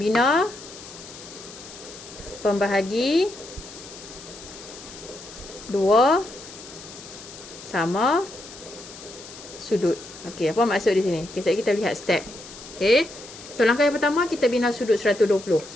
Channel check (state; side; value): noise; left; hiss, 16 dB below the sound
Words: pembahagi 2 sama sudut. Okey, apa maksud di sini? Okey, sekarang kita lihat step. Okey. So langkah yang pertama kita bina sudut 120.